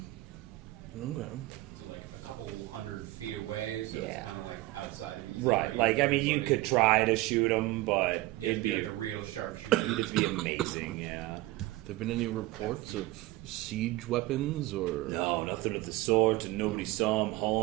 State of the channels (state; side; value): quieter; left; 18.5 dB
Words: Okay. So like a couple 100 feet away, so it's Yeah. kind of like outside of easy Right. range Like, I for mean, you everybody. could try to shoot him, but You have to it'd be like a real sharpshooter. it'd be amazing. Yeah. There been any reports of siege weapons or? No, nothing of the sort, and nobody saw him